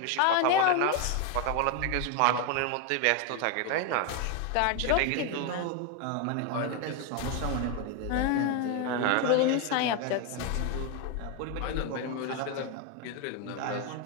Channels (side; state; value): both; different; correlation 0.01